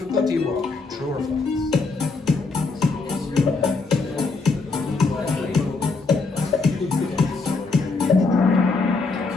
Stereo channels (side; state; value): right; quieter; 4.0 dB